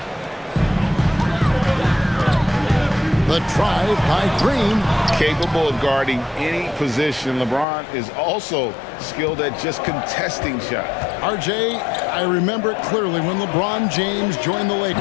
The drive by Green. Capable of guarding any position. LeBron is also skilled at just contesting shots. RJ, I remember it clearly when LeBron James joined the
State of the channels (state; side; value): drops out; right; at 7.7 s